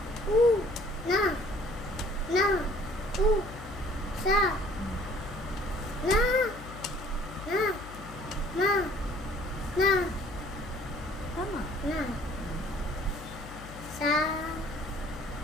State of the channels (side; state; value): left; noise; hum, 14 dB below the sound